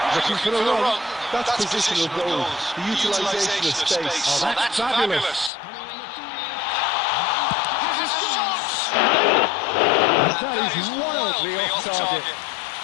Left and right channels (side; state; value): right; drops out; at 5.5 s